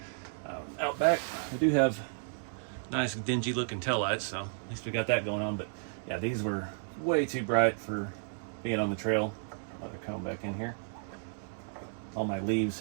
Out back, I do have nice dingy looking taillights, so at least we got that going on. But yeah, these were way too bright for being on the trail. Let it come back in here. All my leaves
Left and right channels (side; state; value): left; silent; digital silence